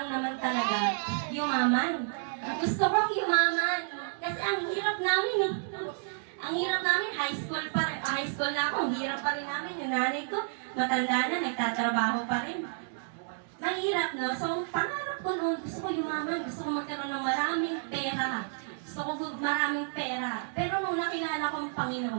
naman talaga, yumaman. Gusto kong yumaman. Kasi ang hirap namin, ang hirap namin, high school na ako, ang hirap pa rin namin. Yung nanay ko, matanda na, nagtatrabaho pa rin. Mahirap, no? So, ang pangarap ko noon, gusto ko yumaman, gusto ko magkaroon ng maraming pera. Gusto ko maraming pera. Pero nung nakilala ko ang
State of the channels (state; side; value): silent; left; digital silence